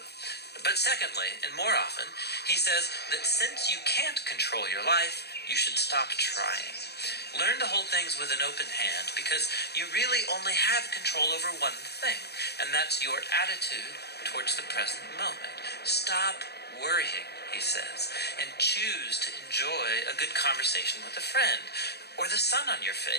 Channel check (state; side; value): late; right; 0.48 ms